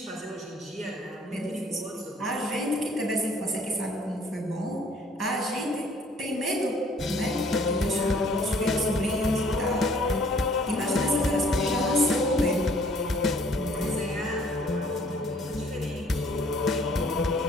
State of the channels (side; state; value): both; normal; correlation 0.59